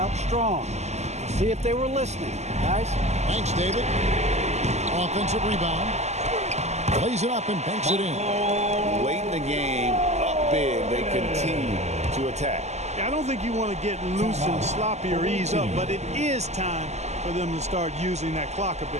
strong. See if they were listening, guys. Thanks, David. Offensive rebound. Plays it up and banks it in. Late in the game, up big, they continue to attack. I don't think you want to get loose and sloppy or ease up, but it is time for them to start using that clock a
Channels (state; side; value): late; left; 0.33 ms